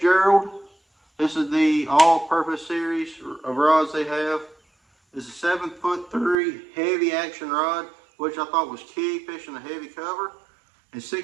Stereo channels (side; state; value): left; drops out; at 6.4 s